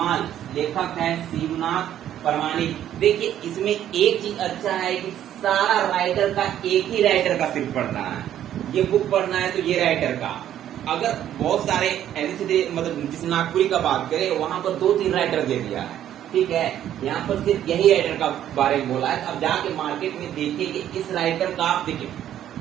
लेखक है शिवनाथ प्रमाणिक। देखिए इसमें एक चीज अच्छा है कि सारा राइटर का एक ही राइटर का सिर्फ पढ़ना है। ये बुक पढ़ना है तो ये राइटर का। अगर बहुत सारे ऐसे मतलब जिस नागपुरी का बात करें वहां पर 2-3 राइटर दे दिया है, ठीक है। यहाँ पर सिर्फ यही राइटर का बारे में बोला है। अब जाके मार्केट में देखिए कि इस राइटर का आप देखिए,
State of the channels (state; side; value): quieter; left; 11.2 dB